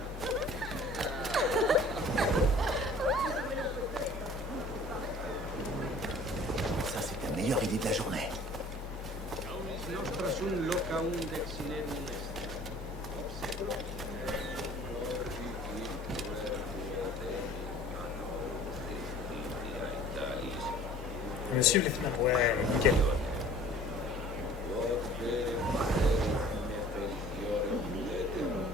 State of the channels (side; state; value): both; normal; correlation 0.49